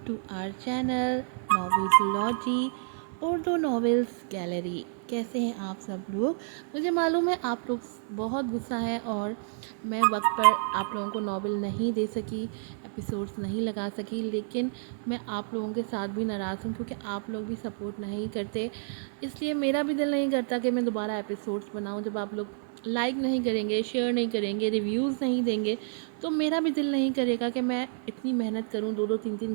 to our channel novelsology Urdu novels gallery. कैसे हैं आप सब लोग? मुझे मालूम है आप लोग बहुत गुस्सा है और मैं वक्त पर आप लोगों को नॉवेल नहीं दे सकी, एपिसोड्स नहीं लगा सकी, लेकिन मैं आप लोगों के साथ भी नाराज़ हूँ क्योंकि आप लोग भी सपोर्ट नहीं करते। इसलिए मेरा भी दिल नहीं करता कि मैं दोबारा एपिसोड्स बनाऊँ। जब आप लोग लाइक नहीं करेंगे, शेयर नहीं करेंगे, रिव्यूज़ नहीं देंगे, तो मेरा भी दिल नहीं करेगा कि मैं इतनी मेहनत करूं, 2-2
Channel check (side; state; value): left; silent; 58 dB below the other